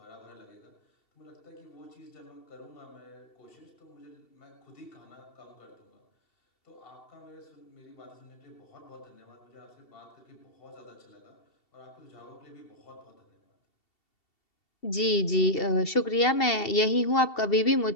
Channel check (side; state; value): right; late; 2.7 ms